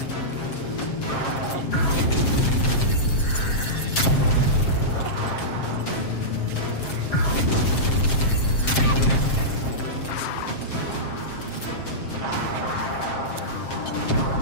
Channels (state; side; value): late; right; 7.5 ms